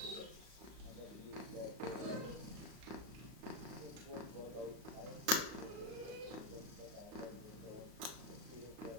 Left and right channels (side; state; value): left; late; 35 ms